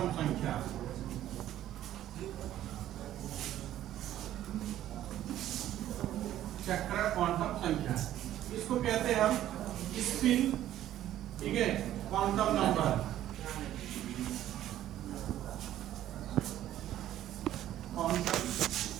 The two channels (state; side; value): quieter; left; 12.7 dB